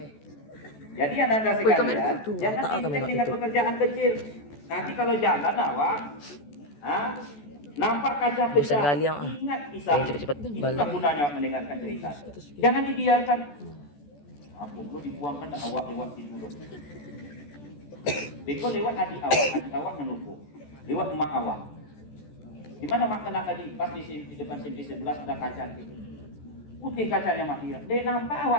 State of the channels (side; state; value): right; late; 14 ms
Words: Jadi Anda sekalian, jangan intens dengan pekerjaan kecil. Nanti kalau jalan awak, nampak kaca pecah, ingat kisah. Itulah gunanya mendengarkan cerita. Jangan dibiarkan. Aku perlu dibuangkan awak lewat situ. Beko lewat adik awak menunggu. Lewat emak awak. Di mana mak kena tadi? Pas di depan simpis 11 ada kaca gitu. Putih kacanya mak dia. Dia nampak